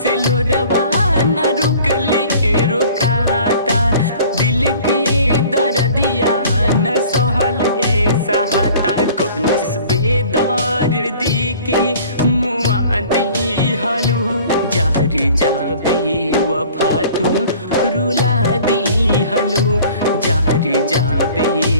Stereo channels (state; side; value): inverted; both; correlation -0.49